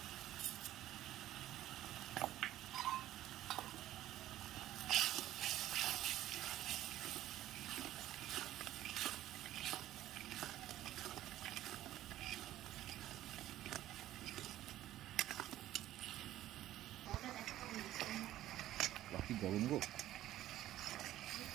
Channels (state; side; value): quieter; left; 13.9 dB